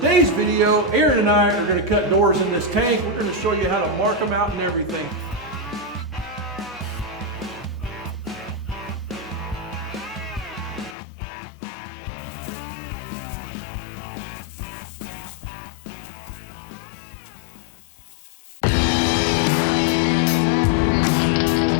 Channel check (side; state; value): right; drops out; at 11.0 s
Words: video, Aaron and I are going to cut doors in this tank. We're going to show you how to mark them out and everything.